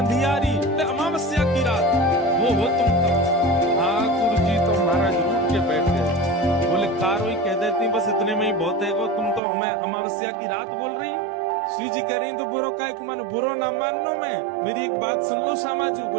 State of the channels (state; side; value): drops out; left; at 9.4 s